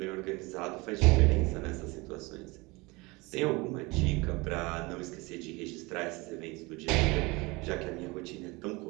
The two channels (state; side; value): quieter; left; 24.7 dB